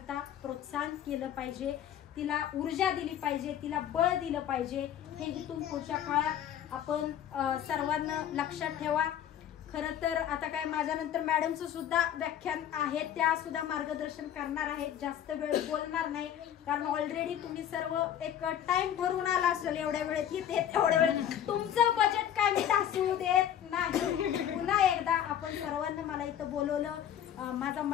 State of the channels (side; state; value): right; quieter; 10.2 dB